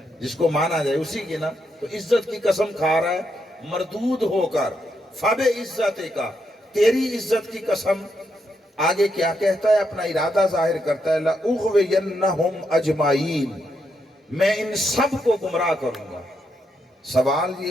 جس کو مانا جائے اسی کی نا. تو عزت کی قسم کھا رہا ہے مردود ہو کر. فَبِعِزَّتِكَ، تیری عزت کی قسم. آگے کیا کہتا ہے؟ اپنا ارادہ ظاہر کرتا ہے لَأُغْوِيَنَّهُمْ أَجْمَعِينَ، میں ان سب کو گمراہ کروں گا. سوال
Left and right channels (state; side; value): normal; both; correlation 0.80